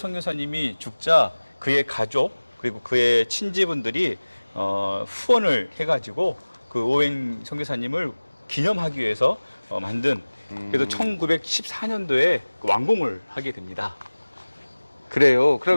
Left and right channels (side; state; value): both; inverted; correlation -1.00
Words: 죽자 그의 가족 그리고 그의 친지분들이 후원을 해가지고 그 오웬 선교사님을 기념하기 위해서 만든 그래서 1914년도에 완공을 하게 됩니다. 그래요.